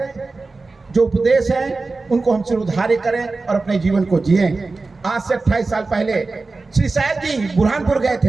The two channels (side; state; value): left; quieter; 3.7 dB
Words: जो उपदेश हैं, उनको हम सिरोधार्य करें और अपने जीवन को जिए। आज से 28 साल पहले श्री साहब जी बुरहानपुर गए